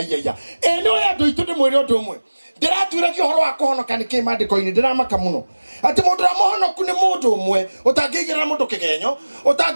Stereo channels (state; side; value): inverted; both; correlation -1.00